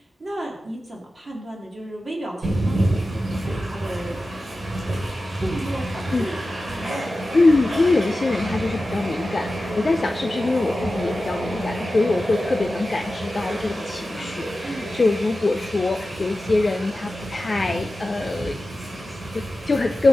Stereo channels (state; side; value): normal; both; correlation 0.94